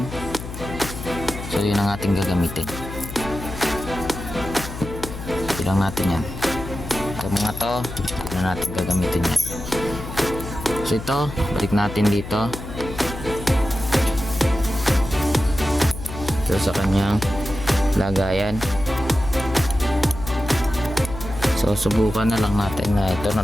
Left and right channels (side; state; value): left; noise; hum, 10 dB below the sound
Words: So yun ang ating gagamitin. Ilang natin yan. Ito mga to, yun ang natin gagamitin yan. So ito, balik natin dito. So sa kanyang lagayan. So subukan na lang natin na ito